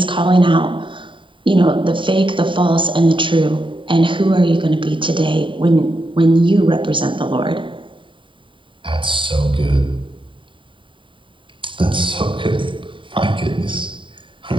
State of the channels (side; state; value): left; late; 0.24 ms